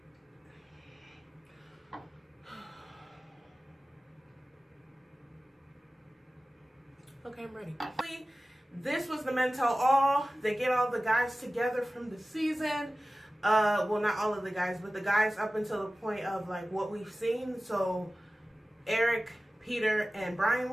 Okay, I'm ready. This was the men tell all. They get all the guys together from the season. Well, not all of the guys, but the guys up until the point of like what we've seen. So Eric, Peter, and Brian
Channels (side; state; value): both; normal; correlation 0.96